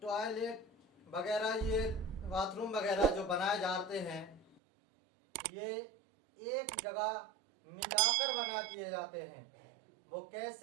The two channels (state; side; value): drops out; left; at 4.6 s